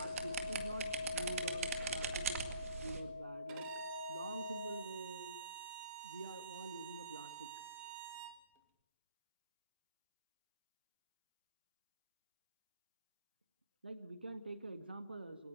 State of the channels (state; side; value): inverted; both; correlation -0.55